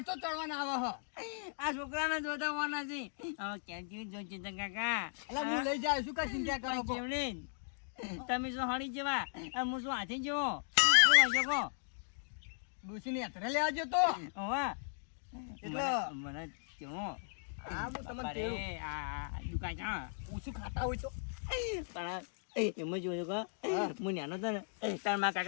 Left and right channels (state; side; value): silent; right; digital silence